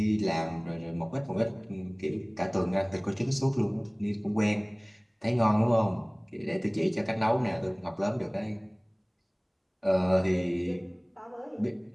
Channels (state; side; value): identical; both; correlation 1.00